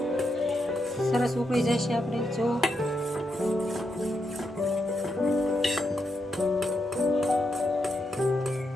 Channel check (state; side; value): normal; both; correlation 0.83